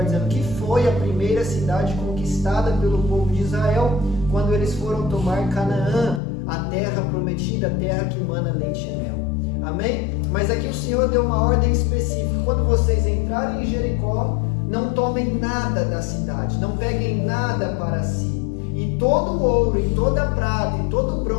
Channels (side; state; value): right; drops out; at 6.2 s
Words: dizendo, que foi a primeira cidade conquistada pelo povo de Israel, quando eles foram tomar Canaã, a terra prometida, a terra que mana leite e mel. Amém? Mas aqui o Senhor deu uma ordem específica: quando vocês entrarem em Jericó, não tomem nada da cidade, não peguem nada para si. E todo o ouro, e toda a prata, e todo o